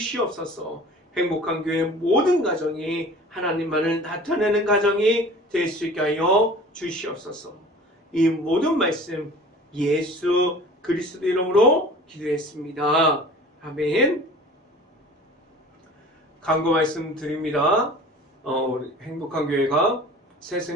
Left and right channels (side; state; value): both; normal; correlation 0.43